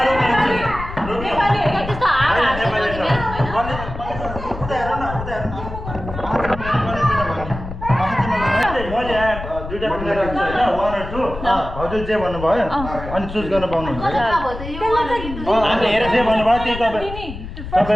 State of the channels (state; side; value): noise; left; rumble, 10 dB below the sound